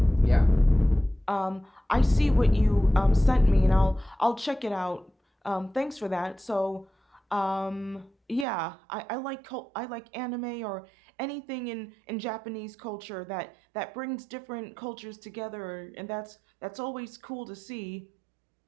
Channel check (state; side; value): drops out; left; at 8.5 s